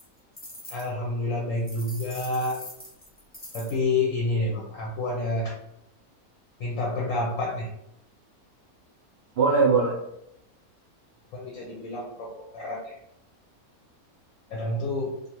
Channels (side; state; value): both; normal; correlation -0.06